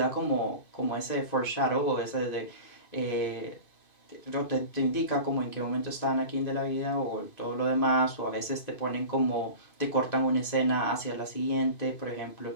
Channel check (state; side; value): late; right; 2.5 ms